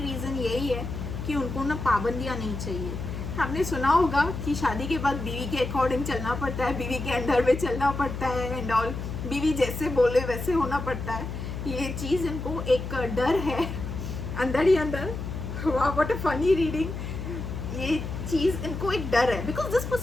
रीज़न यही है कि उनको ना पाबंदियाँ नहीं चाहिए। आपने सुना होगा कि शादी के बाद बीवी के अकॉर्डिंग चलना पड़ता है, बीवी के अंडर में चलना पड़ता है एंड ऑल, बीवी जैसे बोले वैसे होना पड़ता है। ये चीज़ इनको एक डर है अंदर ही अंदर। वाह, व्हाट अ फनी रीडिंग। ये चीज़ इनको एक डर है, because this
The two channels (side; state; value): left; noise; hum, 6 dB below the sound